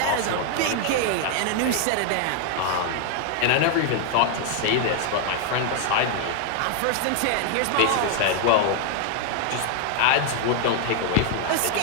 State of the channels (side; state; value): both; different; correlation 0.00